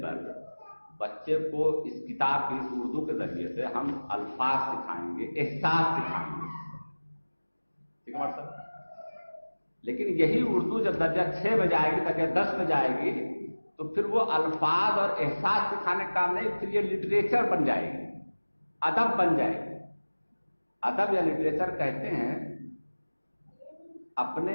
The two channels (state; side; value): inverted; both; correlation -1.00